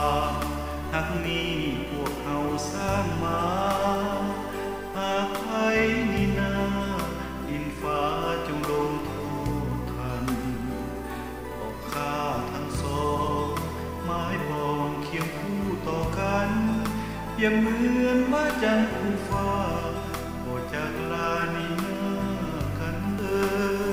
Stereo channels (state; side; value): identical; both; correlation 1.00